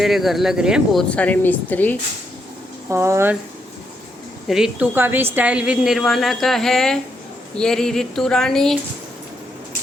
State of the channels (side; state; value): both; normal; correlation 0.79